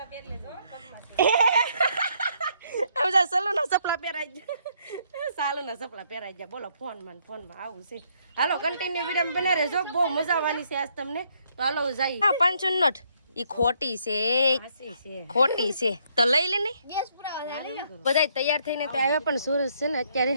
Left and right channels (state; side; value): inverted; both; correlation -0.70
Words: સલુના સપલા પહેરાઈ ગયા, સાલુના સપલા પહેરાઈ ગયા. બોલો ફોનમાં આવું છે. હાલો કન્ટિન્યુ વિડીયો બના રહેજો, બહુ મજા આવવાની છે આજ તમને. તો હાલો જઈએ. 500 નોટ ઈ ખોટી છે, ખોટી છે તો લઈ લે ને. બધા તૈયાર થઈને તો આવ્યા પણ સુરજ છે ને અત્યારે